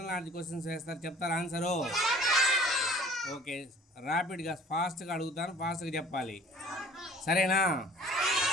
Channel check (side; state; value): both; normal; correlation 0.50